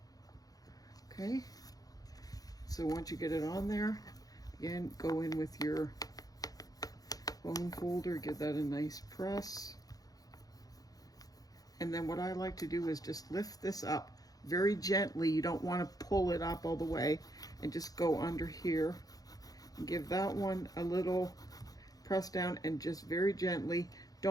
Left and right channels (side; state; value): right; late; 0.18 ms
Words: Okay, so once you get it on there, again, go in with your bone folder, give that a nice press. And then what I like to do is just lift this up very gently. You don't want to pull it up all the way, and just go under here and give that one a little press down, and just very gently.